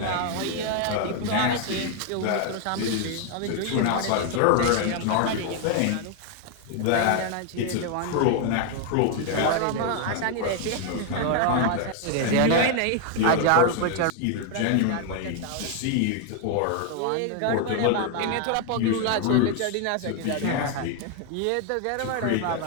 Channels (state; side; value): different; both; correlation 0.00